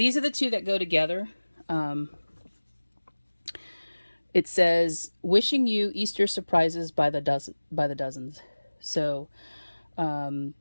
are the two that go together. It says, wishing you Easter surprises by the dozens. So,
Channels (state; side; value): inverted; both; correlation -1.00